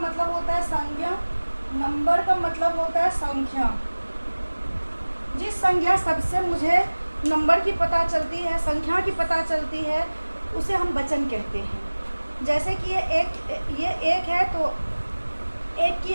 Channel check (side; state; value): both; inverted; correlation -1.00